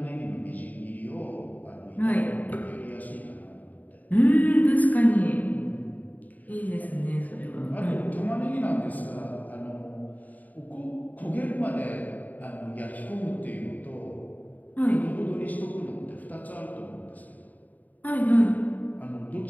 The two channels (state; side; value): late; right; 0.078 ms